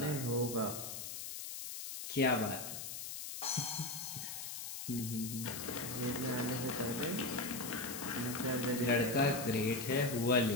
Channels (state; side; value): noise; left; hiss, 7 dB below the sound